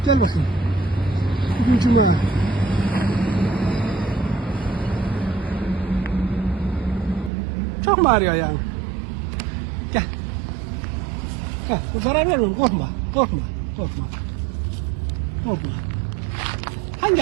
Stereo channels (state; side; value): drops out; left; at 7.3 s